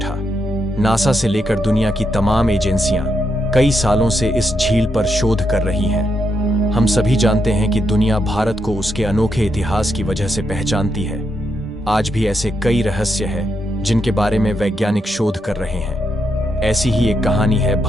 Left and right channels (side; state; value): both; normal; correlation 0.81